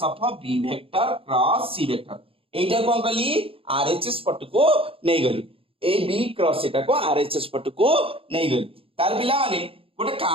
of B vector cross C vector एटा कोन कली आरएचएस पट को नहीं गली ए बी क्रॉस एटा को आरएचएस पट को नहीं गली तार पिला माने गोटे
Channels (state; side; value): late; left; 0.27 ms